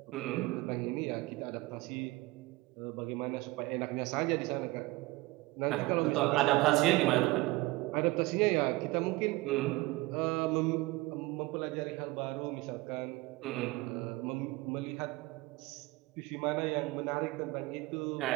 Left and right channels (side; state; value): left; quieter; 20.8 dB